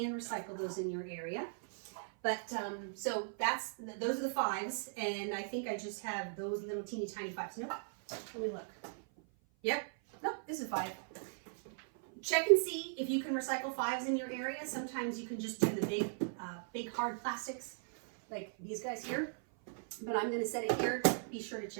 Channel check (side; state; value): left; silent; 52 dB below the other